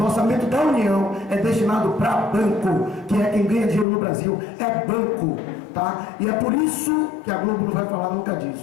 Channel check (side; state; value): right; drops out; at 3.9 s